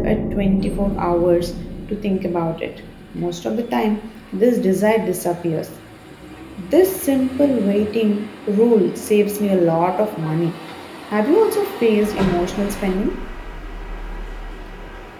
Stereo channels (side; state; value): both; identical; correlation 1.00